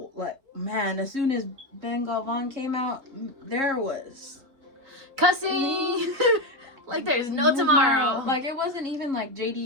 like, man, as soon as Ben Galvan came out, there was cussing. Like there's no tomorrow. Like, it wasn't even like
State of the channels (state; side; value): late; left; 3.7 ms